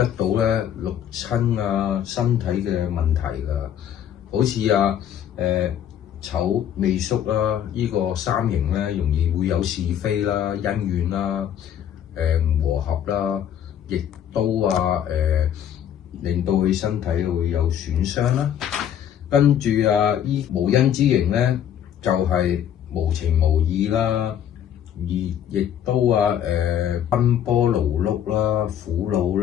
到咧六親身體嘅問題㗎。好似丑未戌啦，呢個三刑咧容易會有是非啦、恩怨啦、唔和合啦，亦都令到佢身體會有損傷啦。跟住依無因之刑咧，就係無情無義啦，而亦都奔波勞碌啦、苦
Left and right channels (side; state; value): right; quieter; 9.8 dB